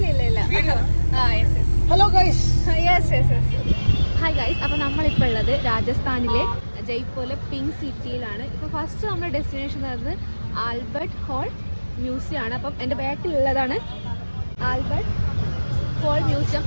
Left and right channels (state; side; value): inverted; both; correlation -1.00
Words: Hello guys. Hi guys. അപ്പോൾ നമ്മളിപ്പോൾ ഉള്ളത് രാജസ്ഥാനിലെ ജയ്പൂരിലെ പിങ്ക് സിറ്റിയിലാണ്. ഇപ്പോൾ ഫസ്റ്റ് നമ്മുടെ ഡെസ്റ്റിനേഷൻ പറയുന്നത് ആൽബർട്ട് ഹോൾ മ്യൂസിയം ആണ്. അപ്പം എൻ്റെ ബാക്കിലുള്ളതാണ് ആൽബർട്ട് ഹോൾ മ്യൂസിയം.